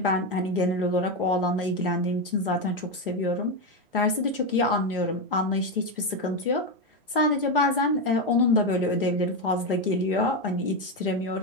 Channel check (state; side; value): normal; both; correlation 0.09